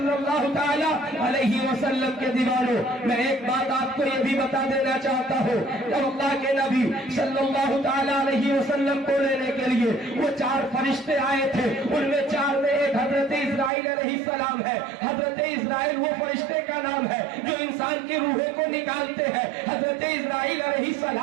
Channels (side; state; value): left; drops out; at 13.7 s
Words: اللہ تعالی علیہ وسلم کے دیوانوں، میں ایک بات آپ کو یہ بھی بتا دینا چاہتا ہوں، جب اللہ کے نبی صلی اللہ تعالی علیہ وسلم کو لینے کے لیے وہ 4 فرشتے آئے تھے، ان میں 4 میں ایک حضرت اسرائیل علیہ السلام ہے۔ حضرت اسرائیل وہ فرشتے کا نام ہے جو انسان کی روحوں کو نکالتے ہیں۔ حضرت اسرائیل علیہ